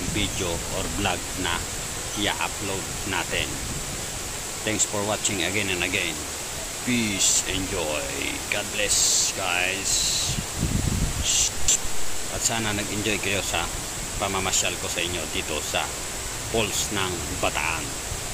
video or vlog na i-upload natin. Thanks for watching again and again. Peace, enjoy. God bless guys. At sana nag-enjoy kayo sa pamamasyal ko sa inyo dito sa Falls ng Bataan,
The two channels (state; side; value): identical; both; correlation 1.00